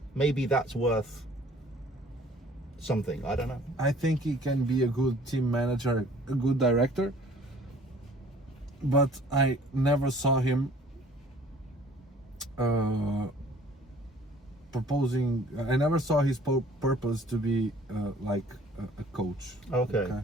maybe that's worth something. I don't know. I think he can be a good team manager, a good director, but I never saw him proposing. I never saw his purpose to be like a coach. Okay.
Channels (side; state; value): both; normal; correlation 0.53